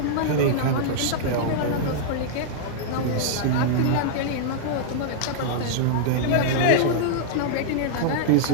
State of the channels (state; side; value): different; both; correlation -0.02